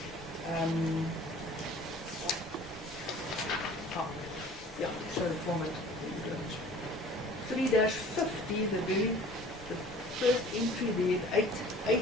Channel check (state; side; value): normal; both; correlation 0.48